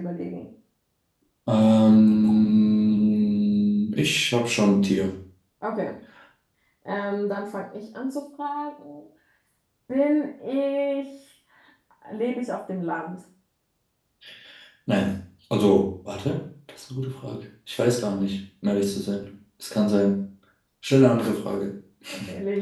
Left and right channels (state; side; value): identical; both; correlation 1.00